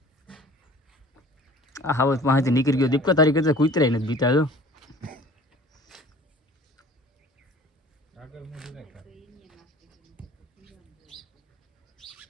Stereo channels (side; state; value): both; normal; correlation 0.47